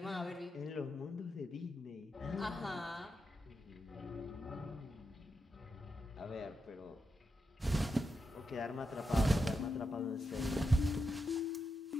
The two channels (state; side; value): normal; both; correlation 0.86